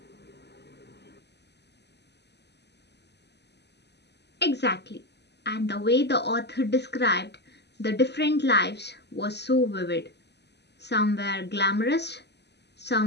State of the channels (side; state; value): right; late; 0.49 ms